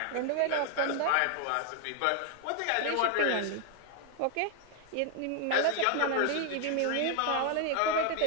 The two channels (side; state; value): both; different; correlation 0.00